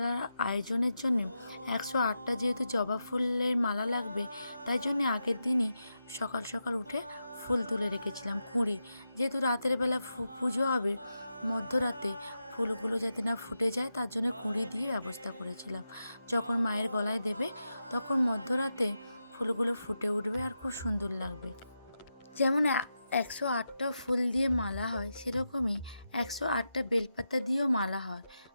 আয়োজনের জন্য 108টা যেহেতু জবা ফুলের মালা লাগবে, তাই জন্য আগের দিনই সকাল সকাল উঠে ফুল তুলে রেখেছিলাম। কুঁড়ি, যেহেতু রাতের বেলা পুজো হবে, মধ্যরাতে ফুলগুলো যাতে না ফুটে যায় তার জন্য কুঁড়ি দিয়ে ব্যবস্থা করেছিলাম। যখন মায়ের গলায় দেবে তখন মধ্যরাতে ফুলগুলো ফুটে উঠবে আর খুব সুন্দর লাগবে। যেমন 108টা ফুল দিয়ে মালা হয়, সেরকমই 108টা বেলপাতা দিয়েও মালা হয়।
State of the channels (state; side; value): inverted; both; correlation -0.88